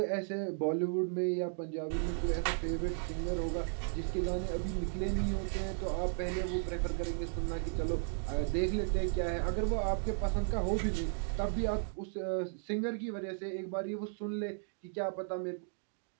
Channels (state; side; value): silent; left; 54 dB below the other